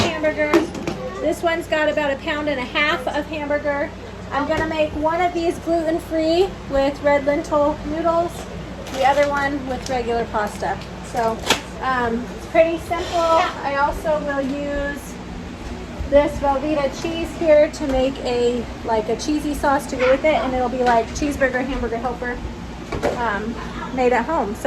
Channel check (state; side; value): identical; both; correlation 1.00